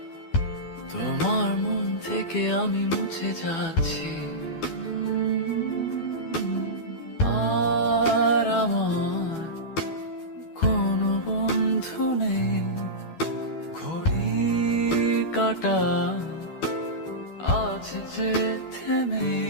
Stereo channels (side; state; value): right; late; 12 ms